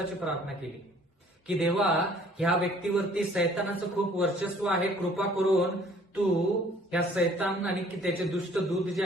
प्रार्थना केली की देवा, ह्या व्यक्तीवरती सैतानाचं खूप वर्चस्व आहे, कृपा करून तू ह्या सैतान आणि त्याचे दुष्ट दूत जे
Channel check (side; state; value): both; normal; correlation 0.56